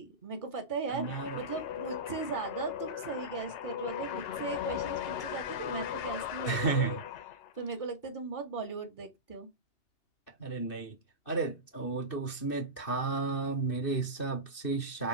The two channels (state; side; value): late; right; 2.6 ms